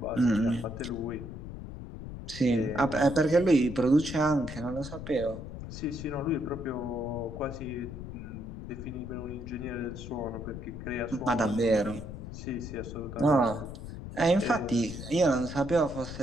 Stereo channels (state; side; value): noise; left; rumble, 10 dB below the sound